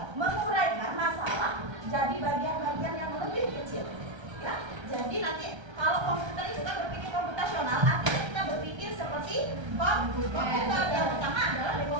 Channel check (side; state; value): left; late; 1.3 ms